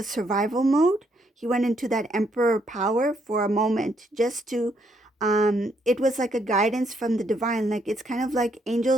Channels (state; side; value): normal; both; correlation 0.73